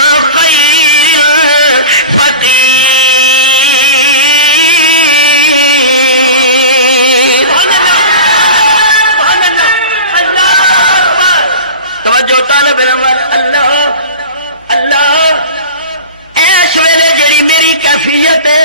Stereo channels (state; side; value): inverted; both; correlation -0.32